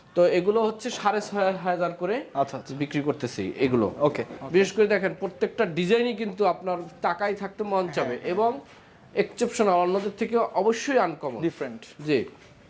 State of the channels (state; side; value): identical; both; correlation 1.00